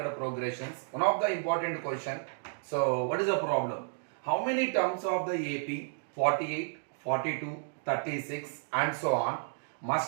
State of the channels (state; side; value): silent; left; digital silence